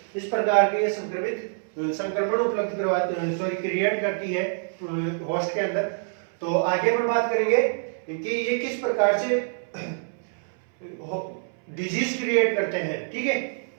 इस प्रकार के ये संक्रमण उपलब्ध क्रिएट करती है होस्ट के अंदर। तो आगे हम बात करेंगे कि ये किस प्रकार से डिजीज क्रिएट करते हैं। ठीक है,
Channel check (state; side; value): silent; left; 61 dB below the other